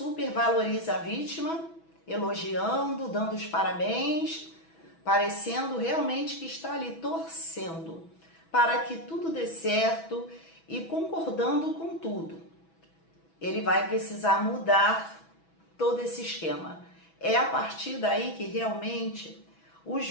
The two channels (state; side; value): late; right; 6.1 ms